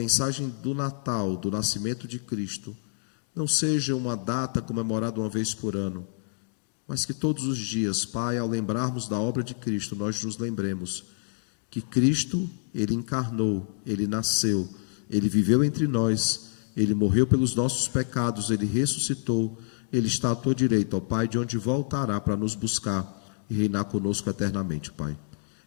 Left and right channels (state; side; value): silent; right; digital silence